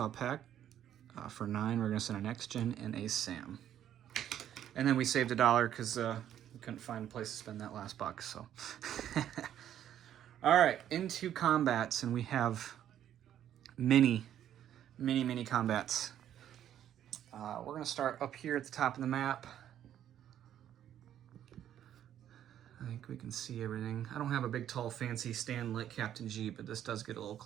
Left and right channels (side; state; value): left; quieter; 10.7 dB